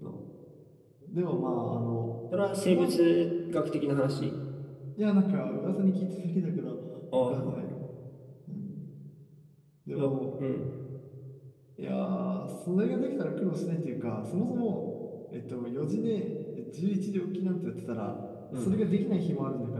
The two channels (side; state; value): both; identical; correlation 1.00